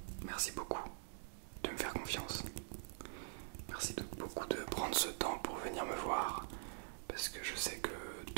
merci beaucoup de me faire confiance. Merci beaucoup de prendre ce temps pour venir me voir. Parce que je sais que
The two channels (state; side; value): silent; left; digital silence